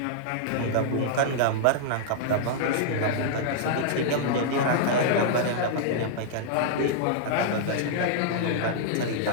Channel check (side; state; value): both; different; correlation -0.01